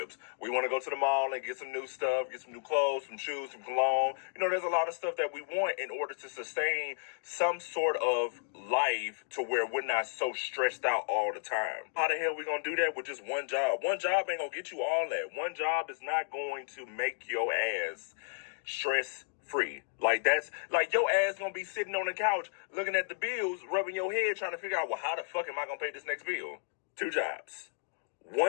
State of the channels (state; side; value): silent; right; digital silence